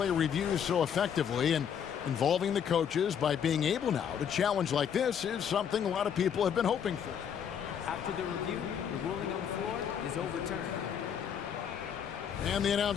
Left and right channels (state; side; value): quieter; right; 8.1 dB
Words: reviews so effectively, and involving the coaches by being able now to challenge like this is something a lot of people have been hoping for. After the review, the ruling on the floor is overturned. And the